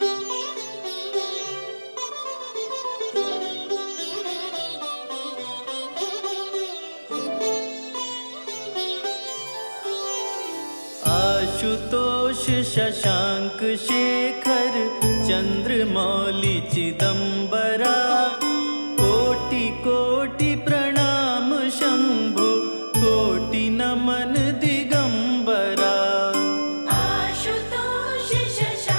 आशुतोष शशांक शेखर चंद्रमौली चिदंबरा कोटि कोटि प्रणाम शंभो कोटि नमन दिगंबरा। आशुतोष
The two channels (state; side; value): inverted; both; correlation -1.00